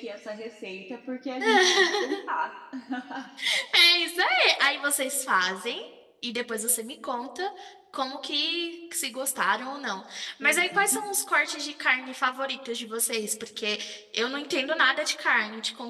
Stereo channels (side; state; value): both; identical; correlation 1.00